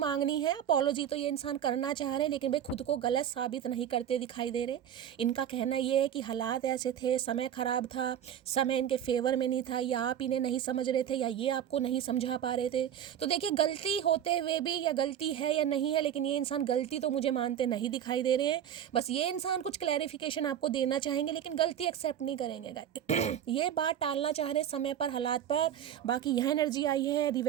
है, अपोलॉजी तो ये इंसान करना चाह रहे हैं लेकिन भाई खुद को गलत साबित नहीं करते दिखाई दे रहे। इनका कहना ये है कि हालात ऐसे थे, समय ख़राब था, समय इनके फेवर में नहीं था, या आप इन्हें नहीं समझ रहे थे या ये आपको नहीं समझा पा रहे थे। तो देखिए गलती होते हुए भी, या गलती है या नहीं है, लेकिन ये इंसान गलती तो मुझे मानते नहीं दिखाई दे रहे हैं। बस ये इंसान कुछ क्लैरिफिकेशन आपको देना चाहेंगे लेकिन गलती एक्सेप्ट नहीं करेंगे। ये बात टालना चाह रहे समय पर, हालात पर। बाकी यह एनर्जी आई है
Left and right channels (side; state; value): left; quieter; 9.9 dB